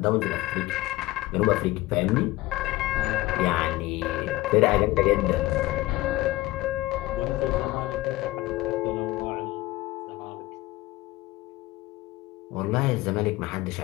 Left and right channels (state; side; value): quieter; right; 18.6 dB